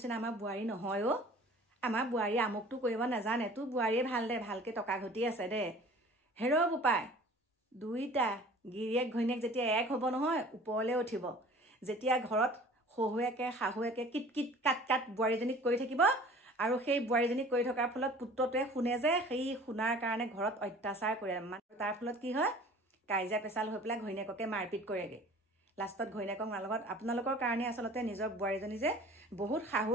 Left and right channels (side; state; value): both; normal; correlation 0.46